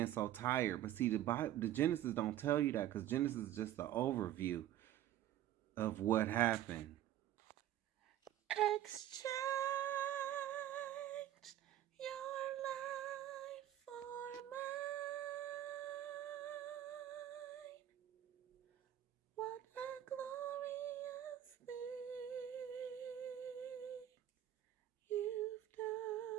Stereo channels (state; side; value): quieter; left; 12.3 dB